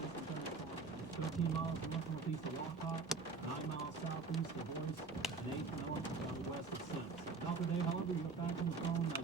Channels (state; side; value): quieter; left; 4.4 dB